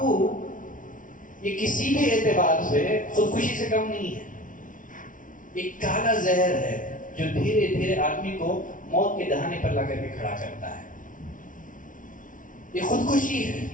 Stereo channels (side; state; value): right; late; 0.38 ms